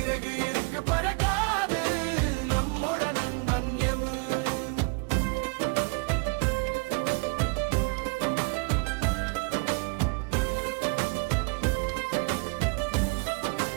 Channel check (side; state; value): left; quieter; 31.9 dB